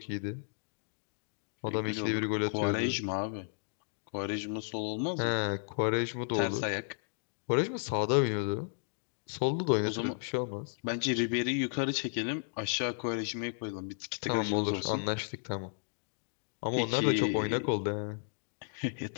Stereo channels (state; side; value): silent; right; digital silence